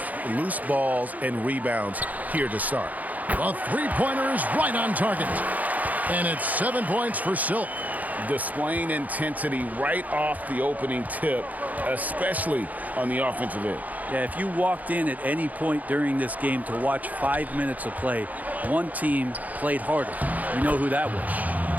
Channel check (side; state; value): left; late; 0.078 ms